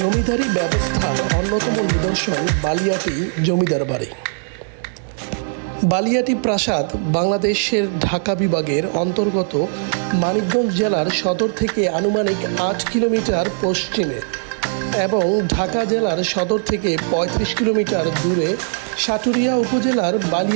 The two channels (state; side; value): silent; left; digital silence